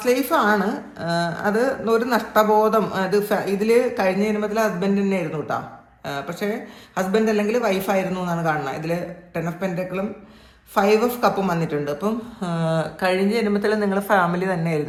ലൈഫാണ്. അത് ഒരു നഷ്ടബോധം. അത് ഇതിൽ കഴിഞ്ഞ ജന്മത്തിൽ ഹസ്ബൻഡ് തന്നെ ആയിരുന്നു കേട്ടോ. പക്ഷേ ഹസ്ബൻഡ് അല്ലെങ്കിൽ വൈഫായിരുന്നു എന്നാണ് കാണുന്നത്. ഇതിൽ 10 ഓഫ് പെൻറ്റക്കിളും 5 ഓഫ് കപ്പും വന്നിട്ടുണ്ട്. അപ്പം കഴിഞ്ഞ ജന്മത്തിൽ നിങ്ങൾ ഫാമിലി തന്നെ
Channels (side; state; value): both; identical; correlation 1.00